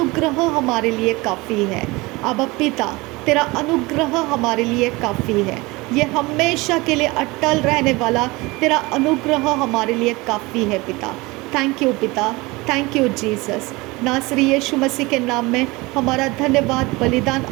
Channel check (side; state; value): left; quieter; 22.9 dB